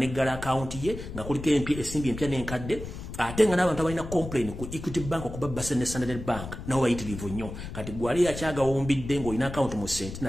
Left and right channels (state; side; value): noise; left; rumble, 10 dB below the sound